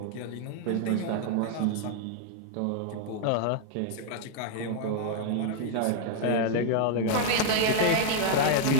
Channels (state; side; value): different; both; correlation 0.00